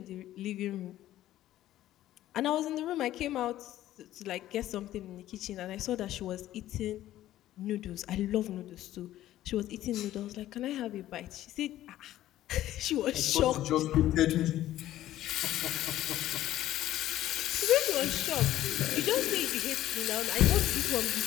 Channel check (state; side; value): quieter; right; 13.8 dB